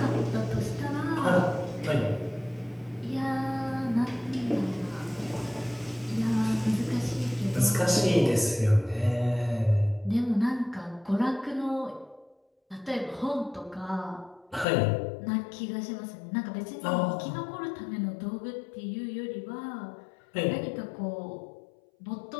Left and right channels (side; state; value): right; drops out; at 14.7 s